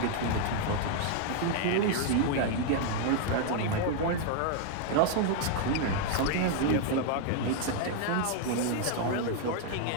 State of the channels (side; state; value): both; different; correlation 0.00